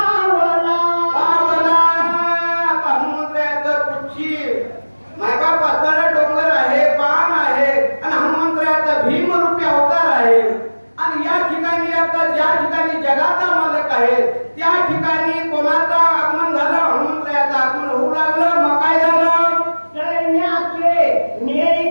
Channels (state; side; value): inverted; both; correlation -1.00